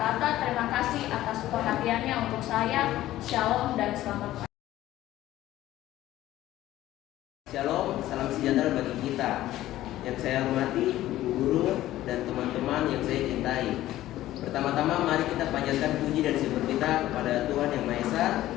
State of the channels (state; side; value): quieter; right; 14.6 dB